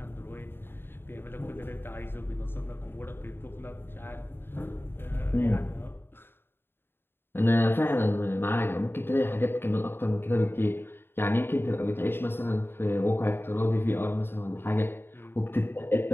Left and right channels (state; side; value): late; right; 0.11 ms